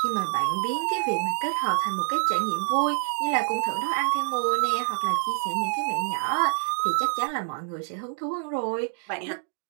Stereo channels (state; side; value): silent; left; 61 dB below the other